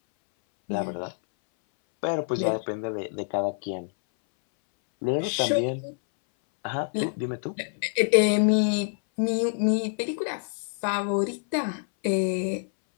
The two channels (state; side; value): silent; right; 60 dB below the other